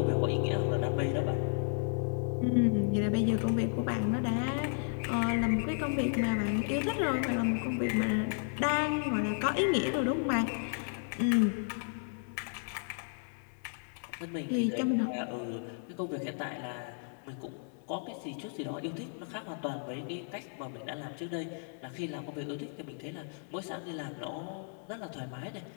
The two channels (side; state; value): right; silent; 55 dB below the other